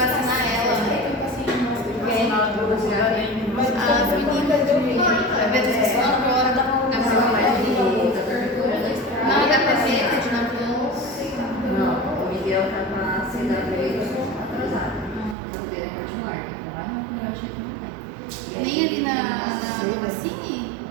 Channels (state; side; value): drops out; left; at 15.4 s